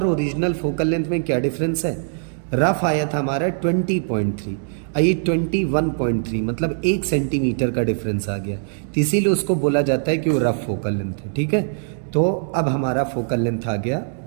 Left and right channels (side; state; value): left; silent; digital silence